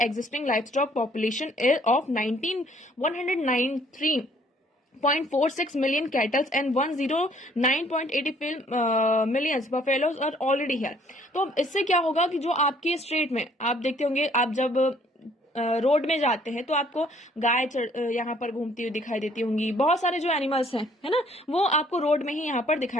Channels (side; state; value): both; normal; correlation 0.61